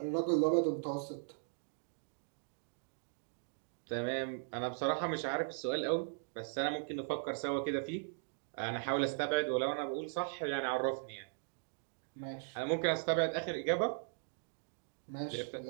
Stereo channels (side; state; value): left; silent; digital silence